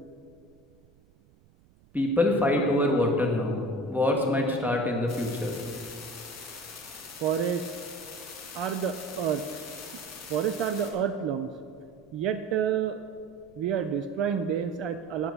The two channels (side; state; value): right; noise; rumble, 30 dB below the sound